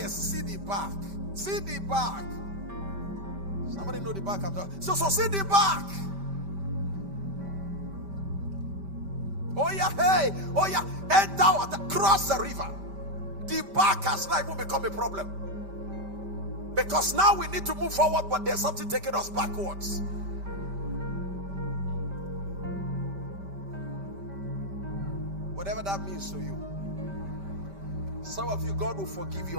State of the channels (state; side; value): late; left; 5.1 ms